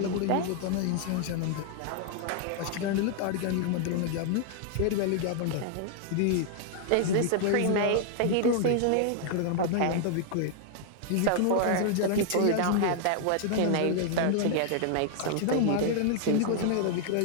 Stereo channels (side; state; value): both; different; correlation 0.00